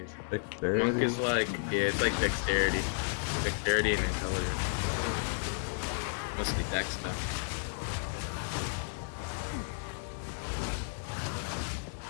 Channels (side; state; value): right; silent; digital silence